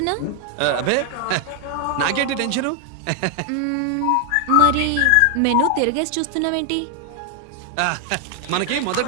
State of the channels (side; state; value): both; different; correlation 0.00